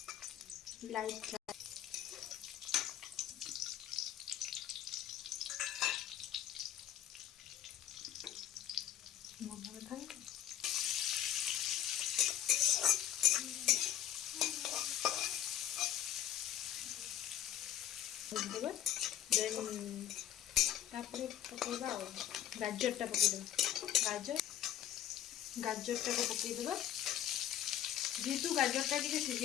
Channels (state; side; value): quieter; right; 11.2 dB